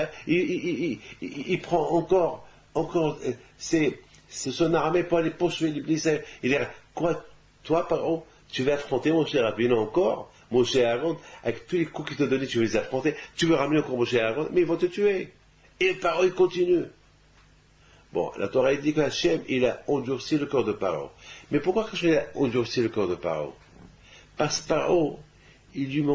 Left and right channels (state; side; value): identical; both; correlation 1.00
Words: prend encore son armée pour aller poursuivre l'Église? Il est quoi? Toi, Paro, tu vas affronter mon cher Rabbeinu encore, mon cher Aaron, avec tous les coups qu'il t'a donnés, tu veux les affronter, tu veux ramener encore mon cher Aaron, mais ils vont te tuer. Et Paro, il continue. Bon, la Torah dit qu'Hachem, il a endurci le corps de Paro. Mais pourquoi il a endurci le corps de Paro? Parce que Paro, il lui